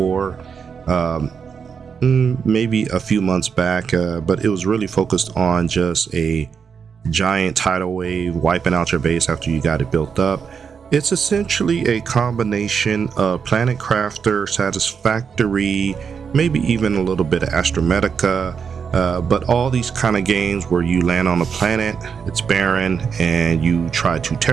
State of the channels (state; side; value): quieter; left; 6.4 dB